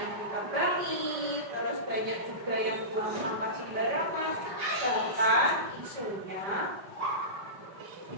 kita bangi, terus banyak juga yang buang sampah sembarangan. Bahkan isunya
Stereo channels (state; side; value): late; left; 5.1 ms